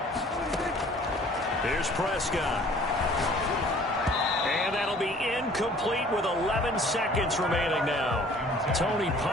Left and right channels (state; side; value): normal; both; correlation 0.52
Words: Here's Prescott. And that'll be incomplete with 11 seconds remaining now. Tony